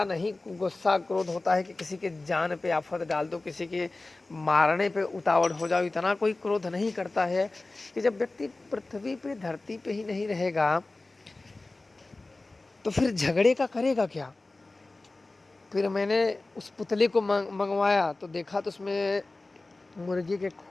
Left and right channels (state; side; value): quieter; right; 3.2 dB